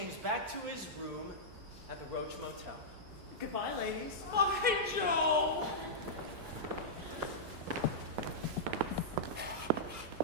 back to his room at the Roach Motel. Goodbye, ladies. Bye, Joe!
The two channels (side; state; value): left; late; 6.4 ms